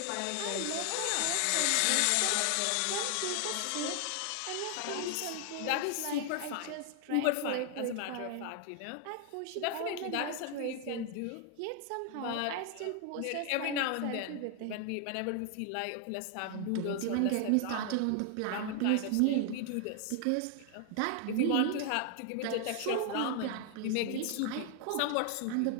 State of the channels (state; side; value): different; both; correlation 0.00